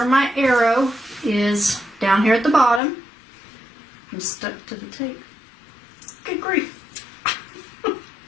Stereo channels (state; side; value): drops out; right; at 2.8 s